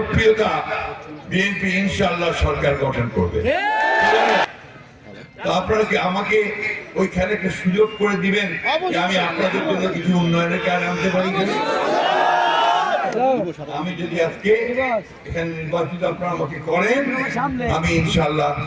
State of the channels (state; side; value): identical; both; correlation 1.00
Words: বিএনপি ইনশাআল্লাহ সরকার গঠন করবে। তো আপনারা কি আমাকে ওইখানে একটা সুযোগ করে দিবেন যে আমি আপনাদের জন্য কিছু উন্নয়নের কাজ আনতে পারি? আমি যদি আজকে এখানে নির্বাচিত আপনারা আমাকে করেন, আমি ইনশাআল্লাহ